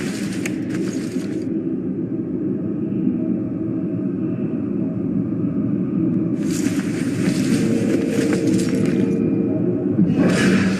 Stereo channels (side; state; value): both; identical; correlation 1.00